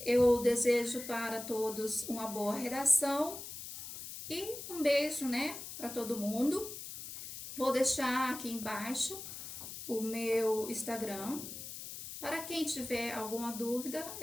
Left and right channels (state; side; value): noise; left; hiss, 10 dB below the sound